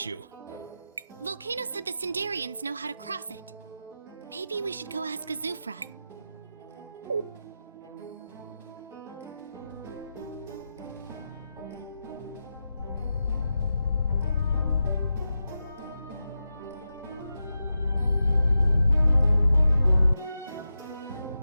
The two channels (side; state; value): both; inverted; correlation -0.90